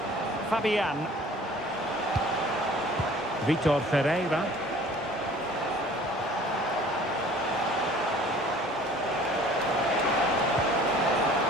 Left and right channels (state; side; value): normal; both; correlation 0.49